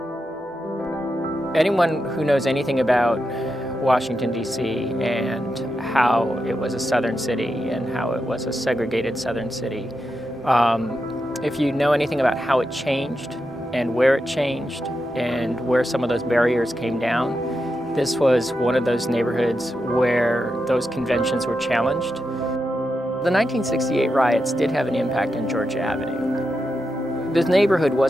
Anyone who knows anything about Washington, D.C. and how it was a southern city and how it was a segregated southern city. If you know anything about how it changed and where it changed and where some of those barriers came down, this was one of those neighborhoods where those conventions were challenged. The 1968 riots did have an impact on Georgia Avenue. This neighborhood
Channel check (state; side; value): normal; both; correlation 0.87